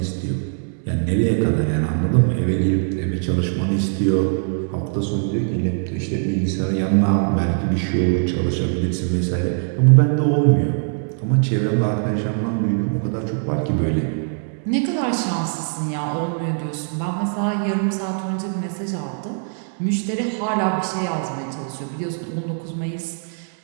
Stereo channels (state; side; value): silent; left; 62 dB below the other